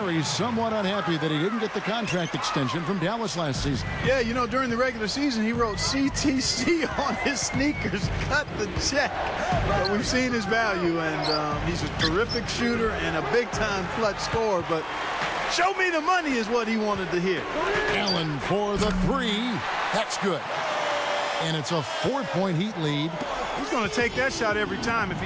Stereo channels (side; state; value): both; identical; correlation 1.00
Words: somewhat unhappy that he didn't get the contract extension from Dallas last season. Yeah, you know, during the regular season, he wrote CTC on his sneakers. Cut the check. But we've seen his value, and he's a terrific shooter and a big-time clutch scorer. But show me the money is what he wanted to hear. Allen for the three. That's good. And it's a 4-point Heat lead. He's going to take that shot every time if